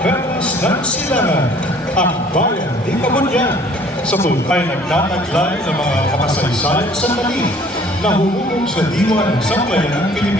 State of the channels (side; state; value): both; normal; correlation 0.55